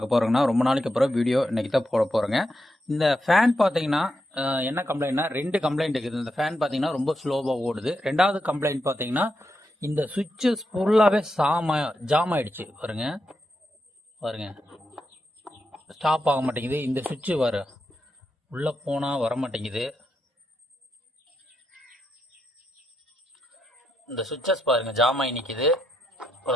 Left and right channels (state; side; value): normal; both; correlation 0.84